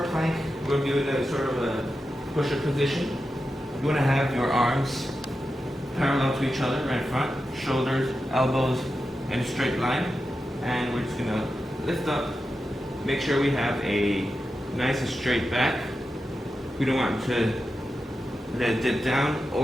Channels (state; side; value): normal; both; correlation 0.90